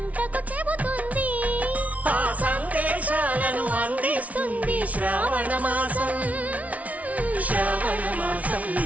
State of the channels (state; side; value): late; left; 0.069 ms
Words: చెబుతుంది ఆ సందేశాలను అందిస్తుంది శ్రావణ మాసం శ్రావణ మాసం